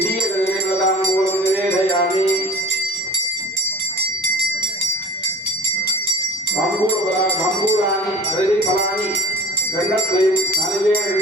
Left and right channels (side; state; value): both; normal; correlation 0.42